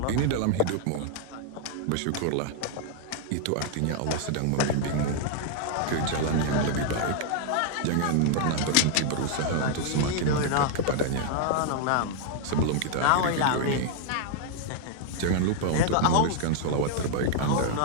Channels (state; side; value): different; both; correlation 0.00